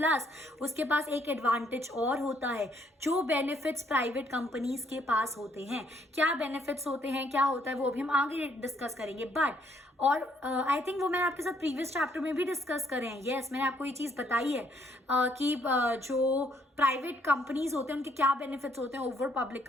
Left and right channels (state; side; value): normal; both; correlation 0.68